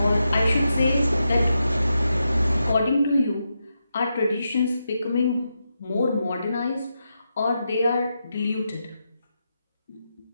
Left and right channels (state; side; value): inverted; both; correlation -0.86